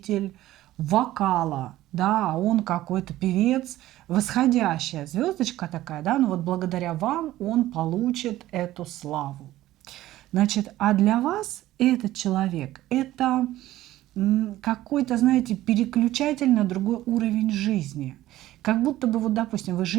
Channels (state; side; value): quieter; left; 15.1 dB